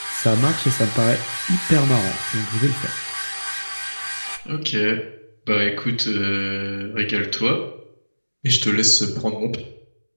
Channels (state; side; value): inverted; both; correlation -1.00